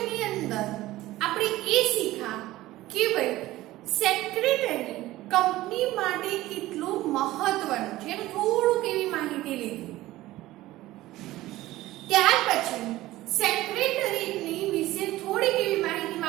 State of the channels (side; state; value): left; quieter; 16.7 dB